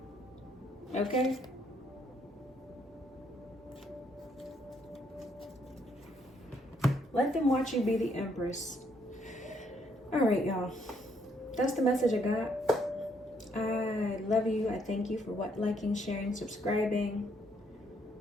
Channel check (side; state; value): both; normal; correlation 0.71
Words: Okay? Let them watch you be the Empress. All right, y'all. That's the message I got. I love you. I thank you for liking, sharing, subscribing.